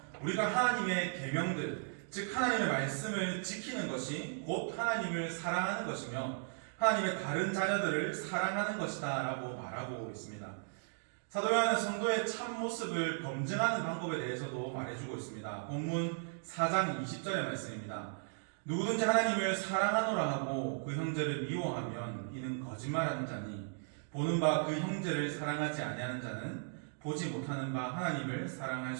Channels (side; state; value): left; silent; digital silence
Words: 우리가 하나님의 계명들, 즉 하나님의 말씀을 지키는 것이 곧 하나님을 사랑하는 것이며 하나님의 다른 자녀들을 사랑하는 것이다 라고 말하고 있습니다. 사도 요한은 성도의 참모습을 검증하는 방법에 대해서도 말해주고 있습니다. 본문 4장 20절의 말씀입니다. 누구든지 하나님을 사랑하노라 하고 그 형제를 미워하면 이는 거짓말하는 자니 보는 바 그 형제를 사랑하지 아니하는 자는 보지 못하는 바 하나님을 사랑할